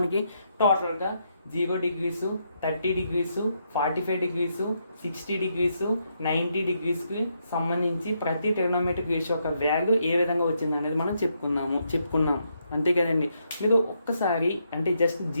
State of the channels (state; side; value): inverted; both; correlation -0.78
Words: టోటల్గా 0 డిగ్రీసు, 30 డిగ్రీసు, 45 డిగ్రీసు, 60 డిగ్రీసు, 90 డిగ్రీస్కి సంబంధించి ప్రతి ట్రిగ్నోమెట్రిక్ రేషియో యొక్క వాల్యూ ఏ విధంగా వచ్చింది అనేది మనం చెప్పుకున్నాం. అంతే కదండి. మీరు ఒక్కసారి అంటే జస్ట్